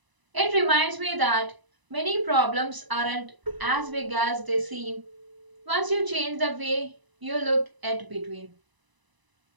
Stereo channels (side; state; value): left; late; 1.0 ms